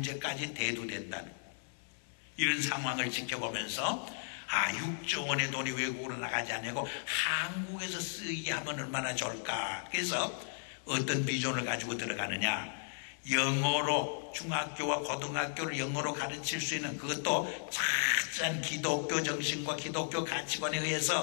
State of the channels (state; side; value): silent; right; digital silence